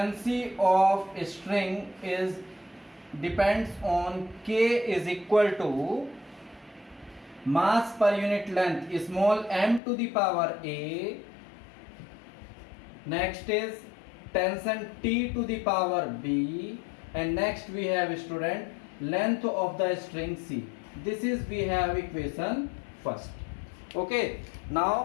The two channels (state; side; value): drops out; right; at 9.8 s